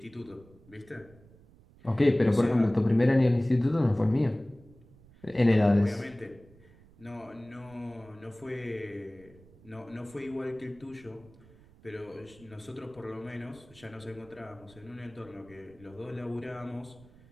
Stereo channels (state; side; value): noise; right; rumble, 25 dB below the sound